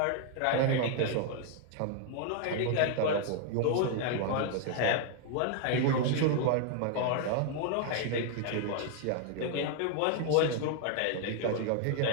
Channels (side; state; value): both; different; correlation 0.00